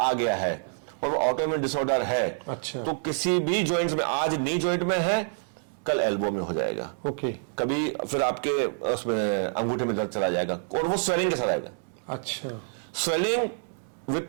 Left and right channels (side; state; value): left; silent; digital silence